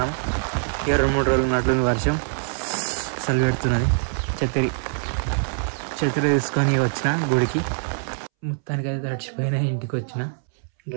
2-3 రోజులు ఉన్నట్లుంది వర్షం. అసలు పెడుతున్నది. ఛత్రి తీసుకొని వచ్చిన గుడికి. మొత్తానికి అయితే తడిచిపోయినా. ఇంటికి వచ్చిన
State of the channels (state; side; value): silent; left; 63 dB below the other